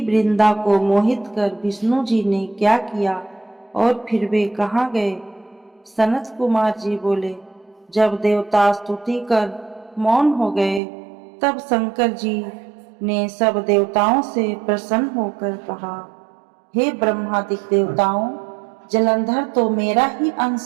को मोहित कर विष्णु जी ने क्या किया और फिर वे कहाँ गए। सनत कुमार जी बोले, जब देवता स्तुति कर मौन हो गए, तब शंकर जी ने सब देवताओं से प्रसन्न होकर कहा, हे ब्रह्मादि देवताओं, जलंधर तो मेरा ही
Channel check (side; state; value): left; drops out; at 10.8 s